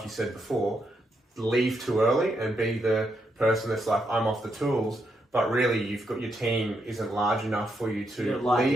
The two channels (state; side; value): normal; both; correlation 0.80